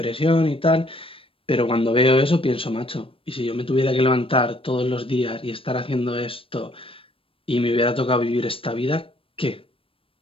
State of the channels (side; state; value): right; late; 0.26 ms